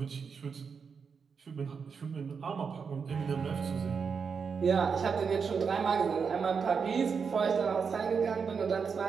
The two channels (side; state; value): left; quieter; 5.9 dB